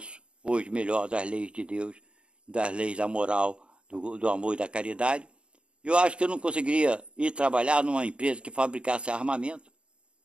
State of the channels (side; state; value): left; late; 0.055 ms